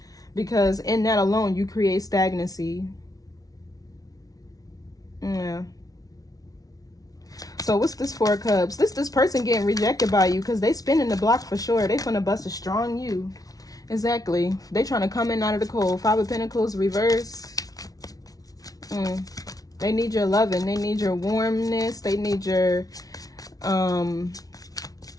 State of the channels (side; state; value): right; late; 0.18 ms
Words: because in that alone you create stagnancy. Yeah. So what's this 4 of Cups? This person getting rejected by you because they spinning the block for sure. They finna bust a strong you. Exactly. They trying to come in out of the cold. 5 of Pentacles reverse. They need your loving. They need your warmness. They need your